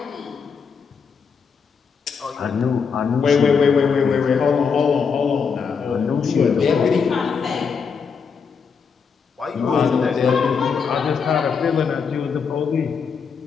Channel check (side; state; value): right; quieter; 5.9 dB